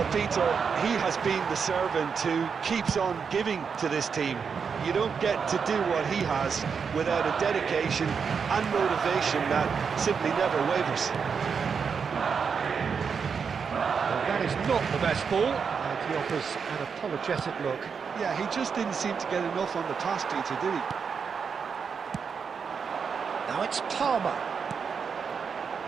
Peter, he has been the servant who keeps on giving to this team. You don't get to do what he has without a dedication and motivation that simply never wavers. Well, that is not the best ball, and he offers an apologetic look. Yeah, he just didn't seem to get enough on the task, Peter, did he? Now it's Palmer.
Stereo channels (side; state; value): left; quieter; 6.1 dB